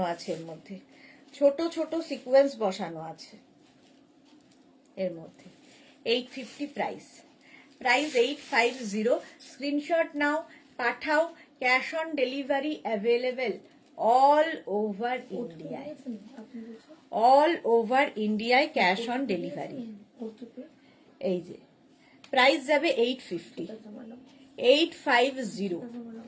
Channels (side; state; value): both; identical; correlation 1.00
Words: আছে এর মধ্যে, ছোট ছোট সিকোয়েন্স বসানো আছে এর মধ্যে। 850 প্রাইস, প্রাইস 850। স্ক্রিনশট নাও, পাঠাও। Cash on delivery available all over ইন্ডিয়ায়, অল ওভার ইন্ডিয়ায় ক্যাশ অন ডেলিভারি। এই যে প্রাইস যাবে 850, 850।